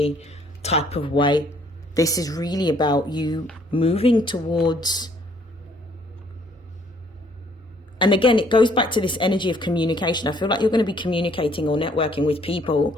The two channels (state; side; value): normal; both; correlation 0.63